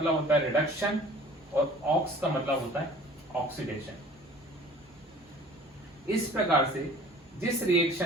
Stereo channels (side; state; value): both; normal; correlation 0.48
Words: होता है रिडक्शन और ऑक्स का मतलब होता है ऑक्सीडेशन। इस प्रकार से जिस